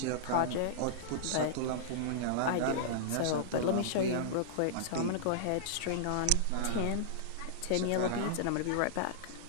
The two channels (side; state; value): both; different; correlation -0.02